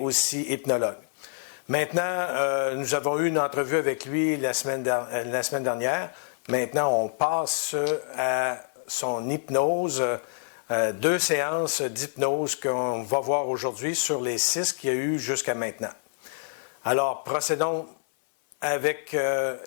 hypnologue. Maintenant, nous avons eu une entrevue avec lui la semaine dernière. Maintenant, on passe à son hypnose. 2 séances d'hypnose qu'on va voir aujourd'hui sur les 6 qu'il y a eu jusqu'à maintenant. Alors, procédons avec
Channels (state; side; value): silent; right; 60 dB below the other